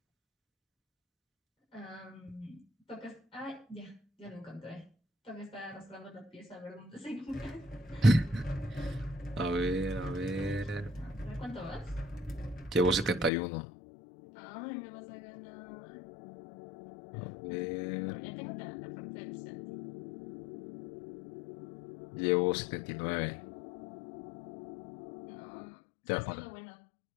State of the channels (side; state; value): right; drops out; at 13.3 s